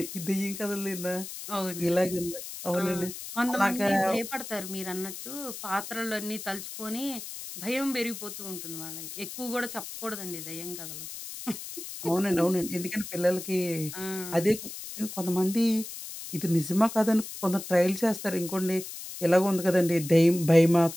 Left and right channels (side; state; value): left; noise; hiss, 10 dB below the sound